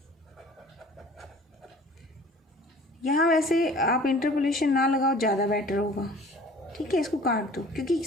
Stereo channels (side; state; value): both; normal; correlation 0.48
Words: यहाँ वैसे आप इंटरपोलेशन ना लगाओ, ज़्यादा बेटर होगा, ठीक है, इसको काट दो, क्योंकि